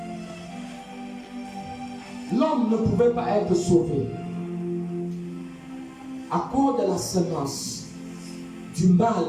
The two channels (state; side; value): identical; both; correlation 1.00